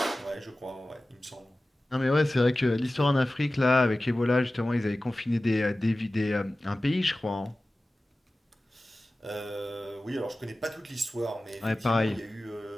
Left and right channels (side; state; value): both; normal; correlation 0.96